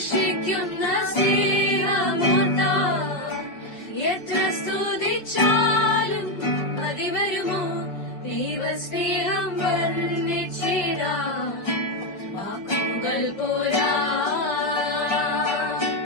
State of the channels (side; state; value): right; late; 5.2 ms